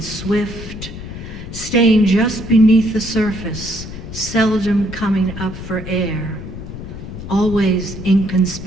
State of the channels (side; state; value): left; noise; rumble, 10 dB below the sound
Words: swift, staying just beneath the surface, seldom coming up for air, always